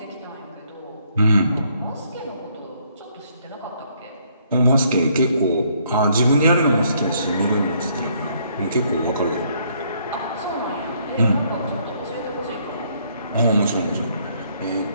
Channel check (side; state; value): both; inverted; correlation -0.68